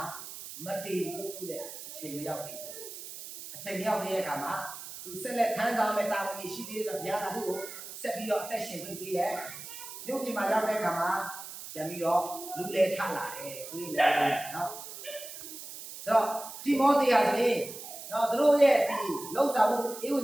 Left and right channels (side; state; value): right; noise; hiss, 11 dB below the sound